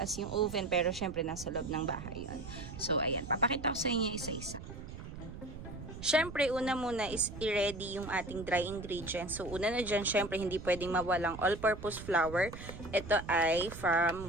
yung oven, pero syempre nasa loob ng bahay yun. So ayan, papakita ko sa inyo isa-isa. Syempre, una muna is i-ready yung ating dry ingredients. So, una na dyan, syempre, hindi pwedeng mawalang all-purpose flour. Ito ay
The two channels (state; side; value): noise; right; rumble, 11 dB below the sound